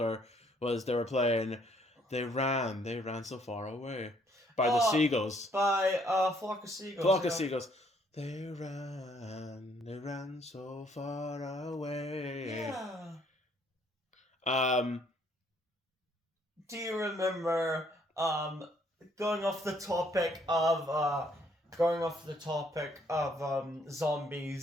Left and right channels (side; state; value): both; normal; correlation 0.66